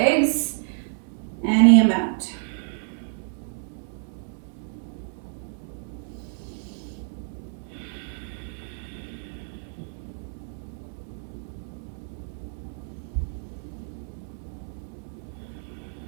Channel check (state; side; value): silent; left; 59 dB below the other